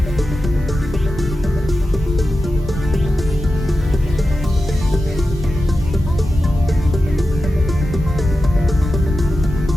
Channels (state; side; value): normal; both; correlation 0.92